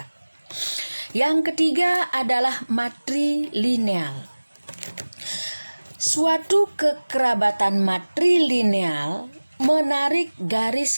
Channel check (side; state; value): both; inverted; correlation -1.00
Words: Yang ketiga adalah matrilineal. Suatu kekerabatan matrilineal menarik